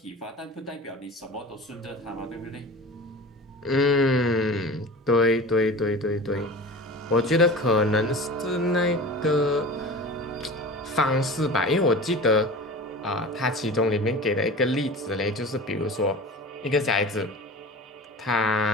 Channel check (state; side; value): normal; both; correlation 0.35